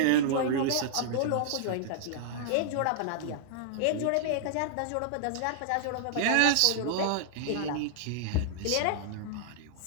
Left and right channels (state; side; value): different; both; correlation -0.01